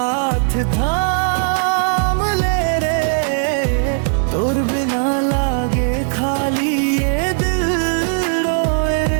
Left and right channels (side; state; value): left; silent; digital silence